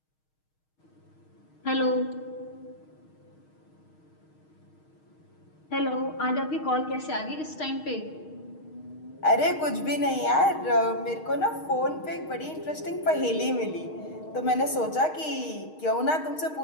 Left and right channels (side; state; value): right; late; 6.4 ms